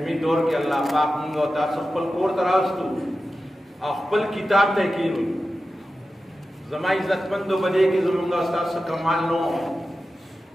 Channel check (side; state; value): both; normal; correlation 0.93